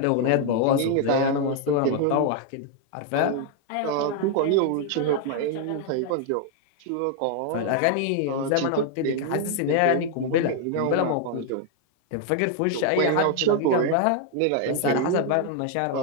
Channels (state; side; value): different; both; correlation 0.00